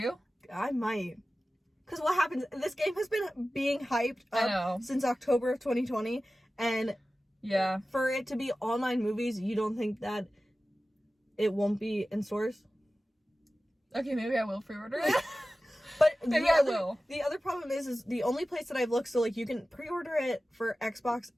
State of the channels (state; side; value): normal; both; correlation 0.95